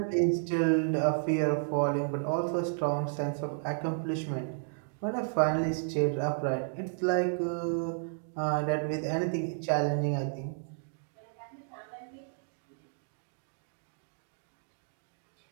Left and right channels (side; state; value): left; silent; digital silence